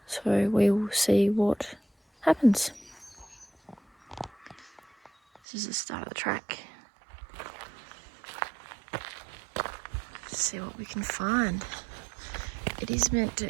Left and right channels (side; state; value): left; drops out; at 5.4 s